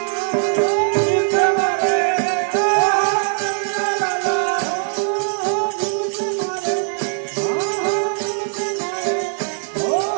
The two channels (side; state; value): left; silent; 60 dB below the other